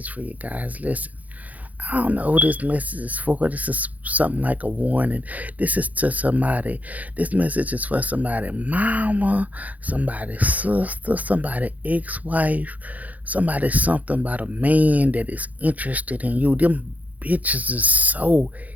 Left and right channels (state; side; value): late; left; 0.077 ms